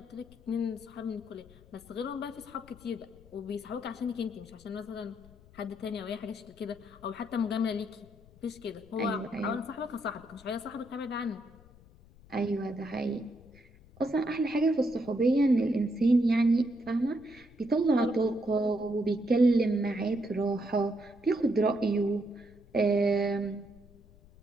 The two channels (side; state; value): left; noise; rumble, 24 dB below the sound